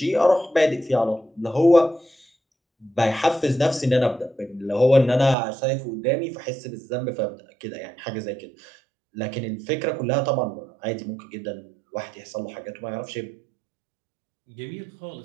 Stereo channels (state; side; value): drops out; left; at 5.4 s